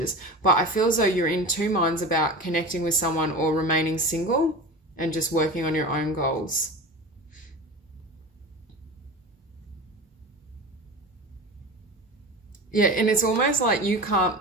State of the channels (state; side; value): normal; both; correlation 0.30